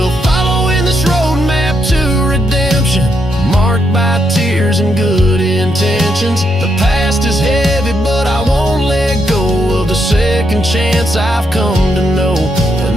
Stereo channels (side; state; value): both; normal; correlation 0.79